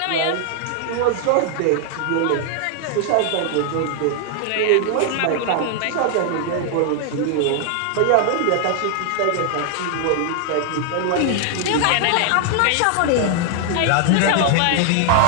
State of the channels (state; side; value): different; both; correlation 0.00